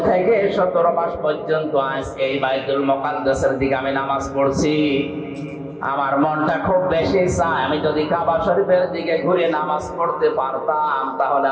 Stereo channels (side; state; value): both; identical; correlation 1.00